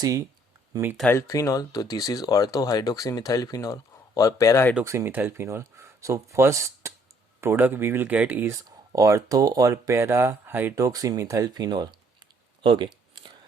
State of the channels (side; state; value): both; normal; correlation 0.64